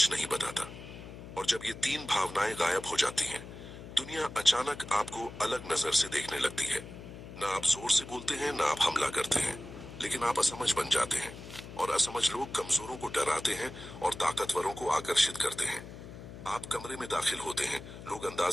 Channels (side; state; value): left; noise; hum, 13 dB below the sound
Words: नहीं बताता। और जब ये तीन भावनाएं गायब हो जाती हैं, दुनिया अचानक आपको अलग नजर से देखने लगती है। ना आप जोर से बोलते हैं, ना आप हमला करते हैं, लेकिन आप असमझ बन जाते हैं। और असमझ लोग कमजोरों को डराते हैं और ताकतवरों को आकर्षित करते हैं। आप कमरे में दाखिल होते हैं, लोग